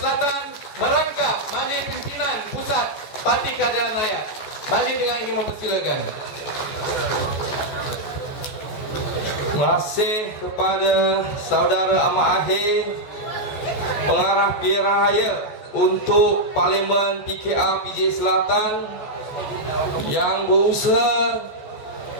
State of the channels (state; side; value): late; right; 14 ms